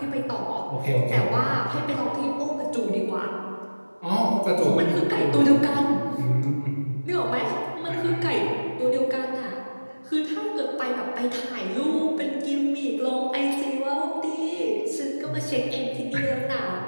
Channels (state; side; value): inverted; both; correlation -1.00